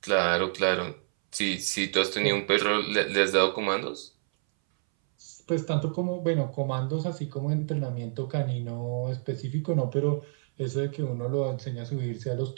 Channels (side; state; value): left; silent; 59 dB below the other